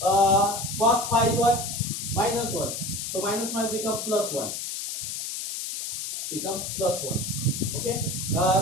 pi is what? Minus 1. So minus might become plus 1. Become plus 1. Okay.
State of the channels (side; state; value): left; noise; hiss, 5 dB below the sound